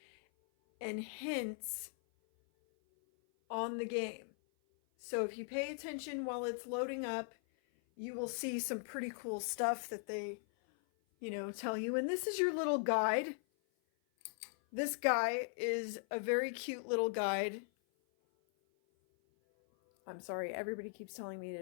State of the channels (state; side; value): silent; right; 52 dB below the other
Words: and hints on the game. So if you pay attention while it's loading up, you will see some pretty cool stuff that they, tell you. And this is your little guide. This guy is a very cute little guide. I'm sorry, everybody keeps telling me